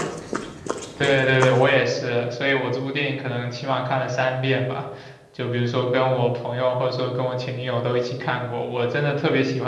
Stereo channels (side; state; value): both; identical; correlation 1.00